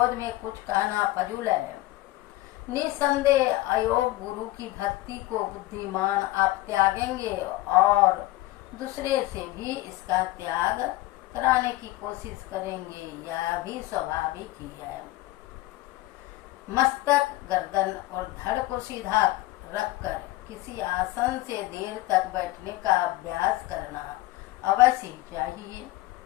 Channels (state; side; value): quieter; right; 17.8 dB